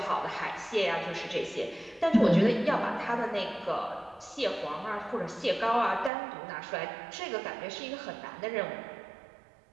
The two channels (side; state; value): left; drops out; at 6.1 s